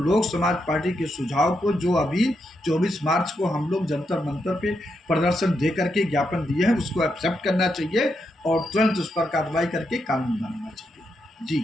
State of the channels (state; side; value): normal; both; correlation 0.82